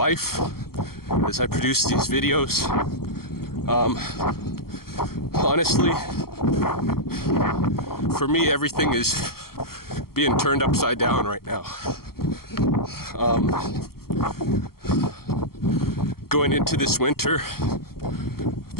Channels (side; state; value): right; late; 0.94 ms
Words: as I produce these videos. Honestly, for me, everything is being turned upside down right now. Going into this winter,